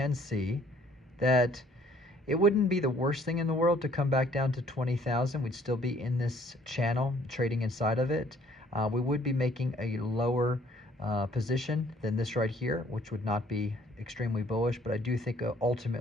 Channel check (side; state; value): both; normal; correlation 0.60